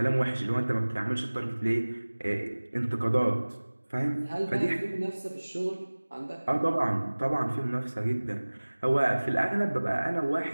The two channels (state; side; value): inverted; both; correlation -1.00